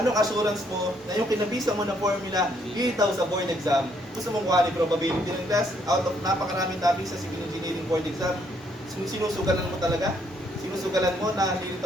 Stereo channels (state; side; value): normal; both; correlation 0.70